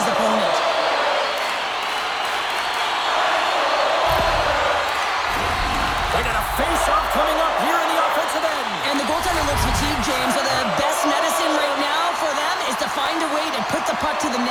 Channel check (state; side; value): identical; both; correlation 1.00